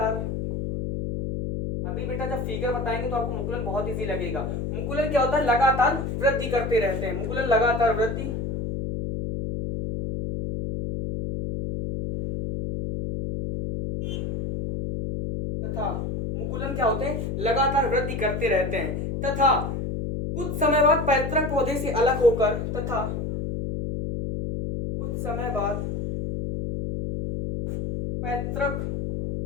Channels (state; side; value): noise; left; hum, 3 dB below the sound